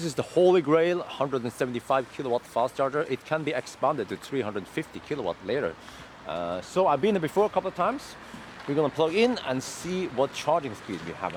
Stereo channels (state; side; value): identical; both; correlation 1.00